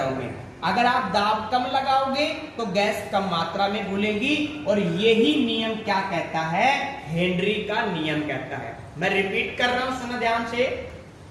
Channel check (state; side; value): identical; both; correlation 1.00